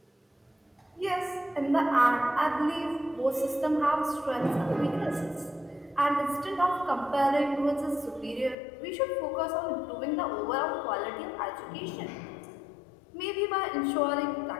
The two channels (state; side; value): drops out; right; at 8.6 s